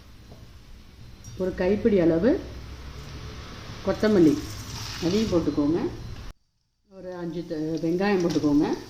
ஒரு கைப்பிடி அளவு கொத்தமல்லி அதையும் போட்டுக்கோங்க. ஒரு 5 வெங்காயம் போட்டுக்கோங்க.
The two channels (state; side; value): identical; both; correlation 1.00